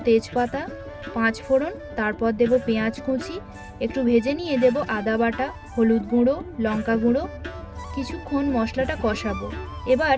তেজপাতা, 5 ফোড়ন, তারপর দেব পেঁয়াজ কুচি, একটু ভেজে নিয়ে দেব আদা বাটা, হলুদ গুঁড়ো, লঙ্কা গুঁড়ো। কিছুক্ষণ মশলাটা কষাবো। এবার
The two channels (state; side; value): identical; both; correlation 1.00